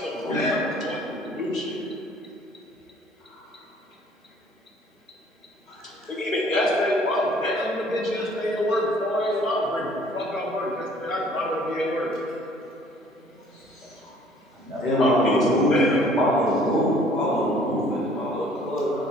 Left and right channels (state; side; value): normal; both; correlation 0.57